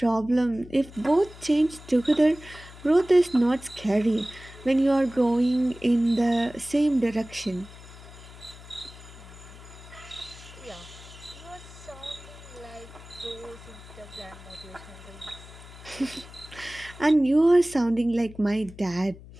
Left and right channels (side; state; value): left; noise; hum, 18 dB below the sound